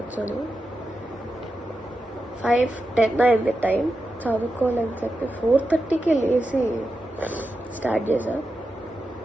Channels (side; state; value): both; normal; correlation 0.89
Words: 5:10 అయింది టైం. చదువుకోవాలని చెప్పి 4:30కి లేచి స్టార్ట్ చేశా.